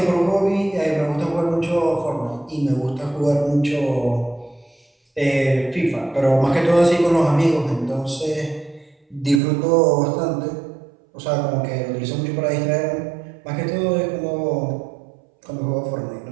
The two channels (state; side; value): drops out; left; at 9.4 s